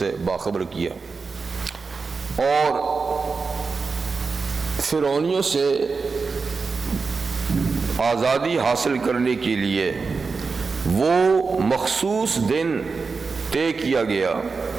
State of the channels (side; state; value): left; quieter; 4.6 dB